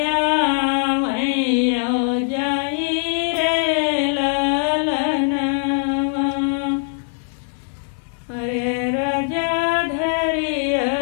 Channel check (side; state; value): right; silent; digital silence